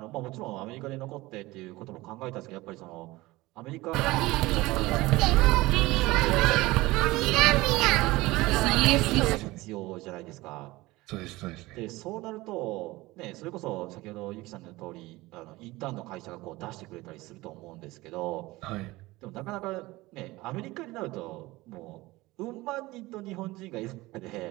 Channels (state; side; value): quieter; left; 20.0 dB